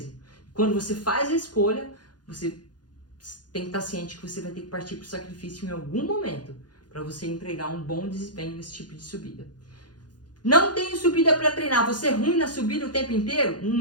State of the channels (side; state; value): right; late; 0.69 ms